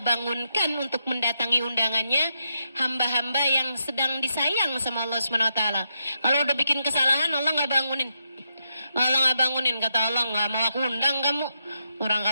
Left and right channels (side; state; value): both; inverted; correlation -0.82